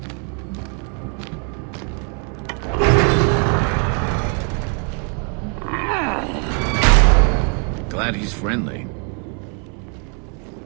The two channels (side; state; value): left; quieter; 39.0 dB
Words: Glad he's friendly.